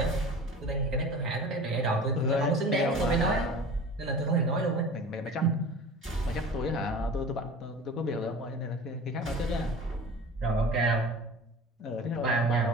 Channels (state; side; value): normal; both; correlation 0.38